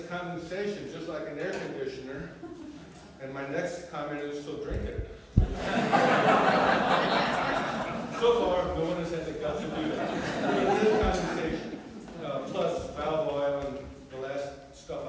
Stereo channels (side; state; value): both; identical; correlation 1.00